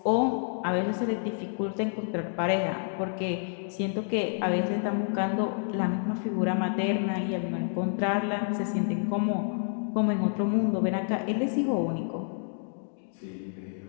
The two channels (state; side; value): silent; right; digital silence